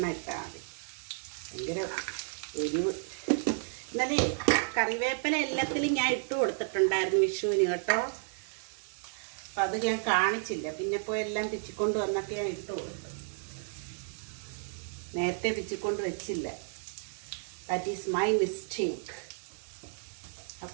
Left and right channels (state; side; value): silent; left; digital silence